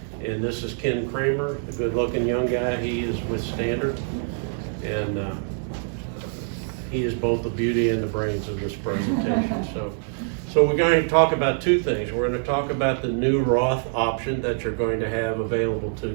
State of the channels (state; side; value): silent; left; digital silence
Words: And this is Ken Kramer, the good-looking young guy. He is with Standard. And he is both the beauty and the brains of this presentation. So we're going to talk about two things. We're going to talk about the new Roth option that you're going to have available to